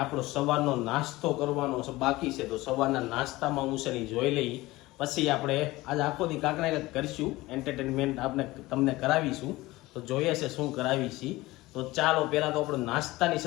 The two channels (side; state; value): right; quieter; 19.4 dB